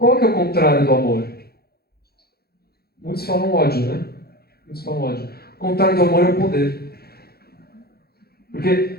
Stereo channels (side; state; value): right; late; 0.46 ms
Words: que é o contrário do amor? Muitos falam ódio, né? Muitos falam ódio. O contrário do amor é o poder. Porque